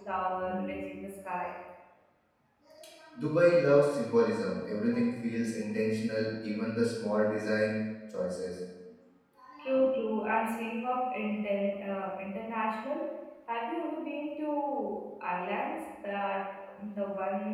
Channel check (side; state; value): both; identical; correlation 1.00